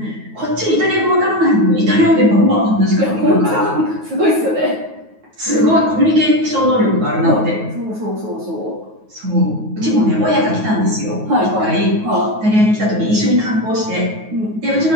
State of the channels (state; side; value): late; left; 9.3 ms